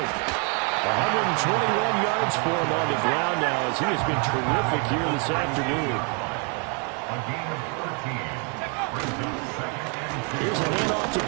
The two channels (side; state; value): left; quieter; 36.2 dB